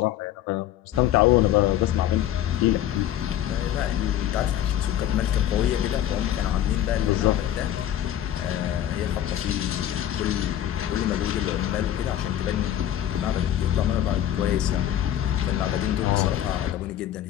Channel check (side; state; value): right; quieter; 11.7 dB